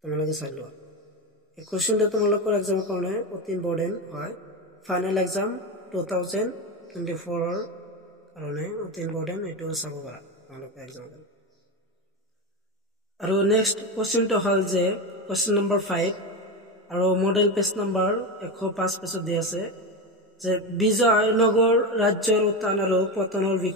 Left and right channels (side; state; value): both; normal; correlation 0.17